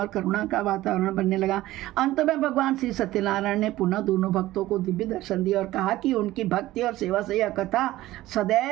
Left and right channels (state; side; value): quieter; left; 16.3 dB